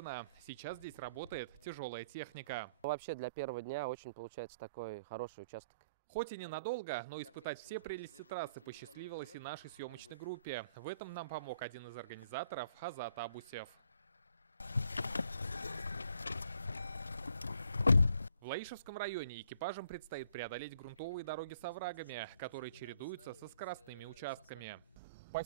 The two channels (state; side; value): inverted; both; correlation -0.64